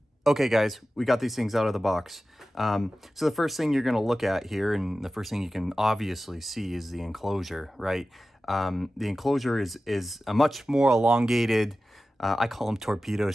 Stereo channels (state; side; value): normal; both; correlation 0.95